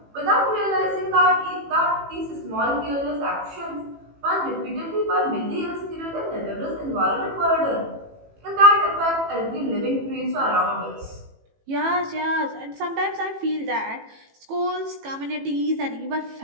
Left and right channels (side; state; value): left; late; 18 ms